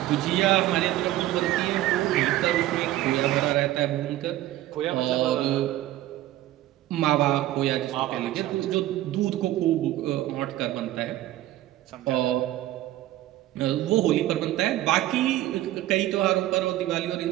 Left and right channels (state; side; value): quieter; left; 14.8 dB